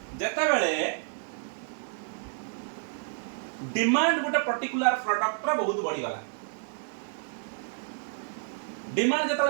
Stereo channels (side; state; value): left; silent; 58 dB below the other